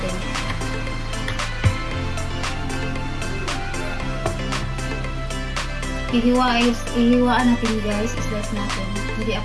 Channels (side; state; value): both; identical; correlation 1.00